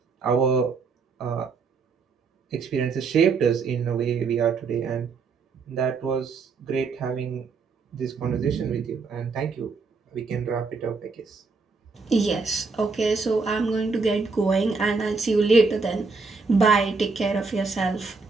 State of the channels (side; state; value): left; quieter; 4.5 dB